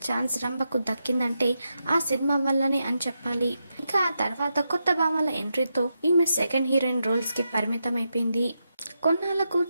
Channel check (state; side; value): inverted; both; correlation -0.86